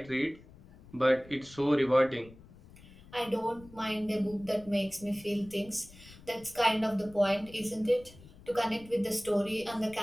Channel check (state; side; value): noise; left; rumble, 21 dB below the sound